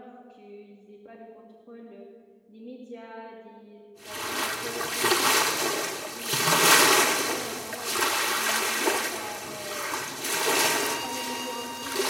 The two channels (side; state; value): both; identical; correlation 1.00